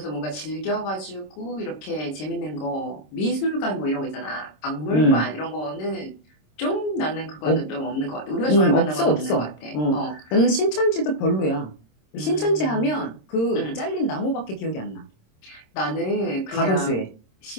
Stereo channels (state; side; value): late; right; 26 ms